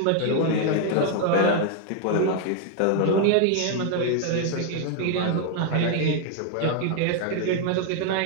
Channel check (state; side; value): different; both; correlation 0.00